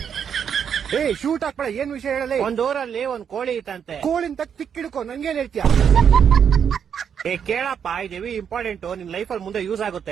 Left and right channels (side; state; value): left; quieter; 7.7 dB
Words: ಶೂಟ್ ಹಾಕ್ಬೇಡ, ಏನ್ ವಿಷಯ ಹೇಳಲಿ. ಒಂದ್ ಊರಲ್ಲಿ ಒಂದ್ ಕೋಳಿ ಇತ್ತಂತೆ. ಕೋಳಿನ ತಕ್ ತಿಕ್ಕಿಡ್ಕೊ, ನಂಗೇನ್ ಹೇಳ್ತೀಯ? ಕೇಳಪ್ಪ, ಇದೇವಿ ಇಂಪಾರ್ಟೆಂಟ್, ನಿನ್ ಲೈಫ್ ಅಲ್ಲಿ ಮುಂದೆ ಯೂಸ್